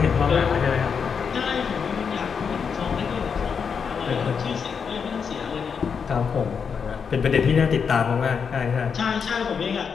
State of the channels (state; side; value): quieter; right; 6.3 dB